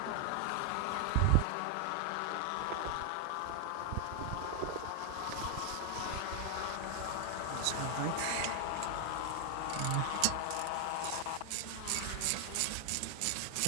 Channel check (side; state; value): both; different; correlation 0.00